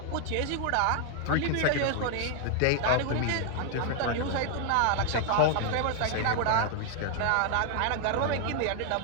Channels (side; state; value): both; different; correlation 0.00